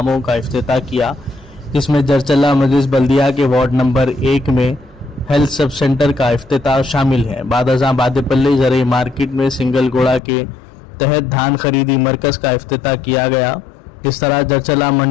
کا افتتاح کیا، جس میں جرچلہ مجلس بلدیہ کے وارڈ نمبر 1 میں ہیلتھ سب سینٹر کا افتتاح شامل ہے۔ بعد ازاں بادپلی زرعی مارکیٹ میں سنگل گوڑا کے تحت دھان خریدی مرکز کا افتتاح کیا گیا۔ اس طرح جرچلہ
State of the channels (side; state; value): right; drops out; at 10.2 s